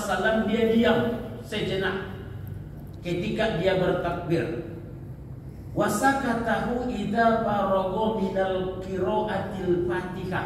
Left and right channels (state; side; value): identical; both; correlation 1.00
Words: dia diam sejenak ketika dia bertakbir. Wasakatahu idza faragha minal qiraatil